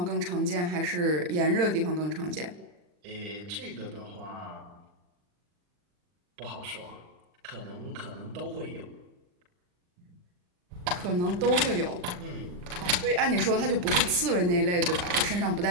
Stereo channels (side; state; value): left; late; 40 ms